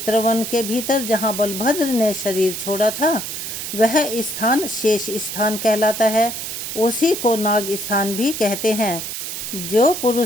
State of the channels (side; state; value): right; noise; hiss, 6 dB below the sound